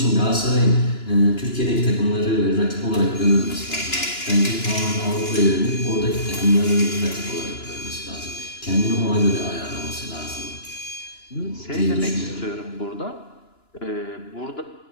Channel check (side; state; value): right; late; 2.9 ms